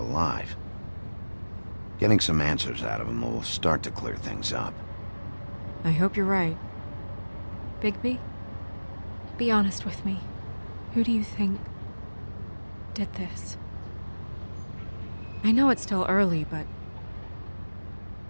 Getting some answers out of him will start to clear things up. I hope you're right. Bigby? Be honest with me. Who do you think did this? I know it's still early, but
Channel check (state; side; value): inverted; both; correlation -1.00